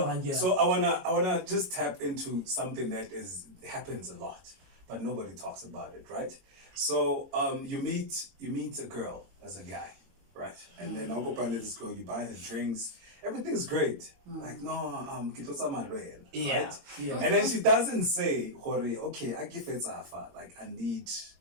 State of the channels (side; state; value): left; late; 22 ms